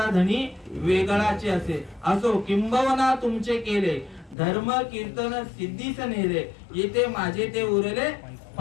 धनी वेगळाचे असे. असो किंबवना तुमचे केले, धर्म कीर्तन सिद्धीस नेले. येथे माझे ते उरले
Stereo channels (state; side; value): drops out; right; at 4.4 s